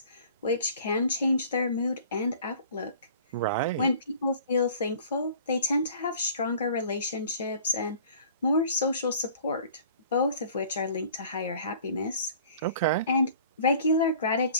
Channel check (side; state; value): both; inverted; correlation -0.49